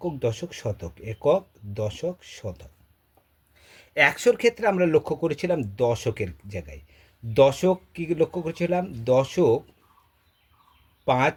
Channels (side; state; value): both; identical; correlation 1.00